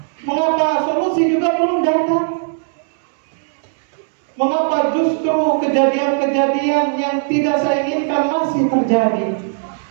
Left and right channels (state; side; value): silent; left; digital silence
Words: Mengapa solusi juga belum datang? Mengapa justru kejadian-kejadian yang tidak saya inginkan masih terjadi?